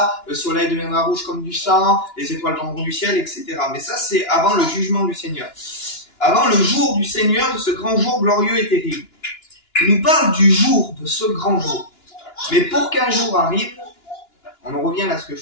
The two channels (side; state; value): right; late; 2.9 ms